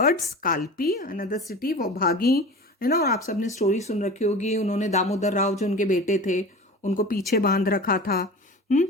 Kalpi, another city. वो भागी, है ना. और आप सबने स्टोरी सुन रखी होगी. उन्होंने दामोदर राव जो उनके बेटे थे उनको पीछे बांध रखा था.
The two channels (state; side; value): normal; both; correlation 0.35